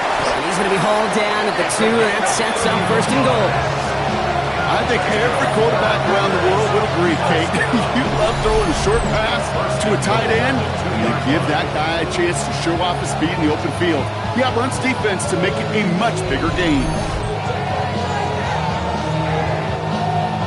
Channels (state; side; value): identical; both; correlation 1.00